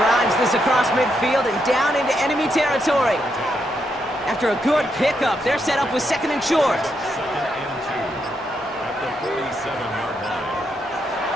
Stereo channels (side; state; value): both; normal; correlation 0.80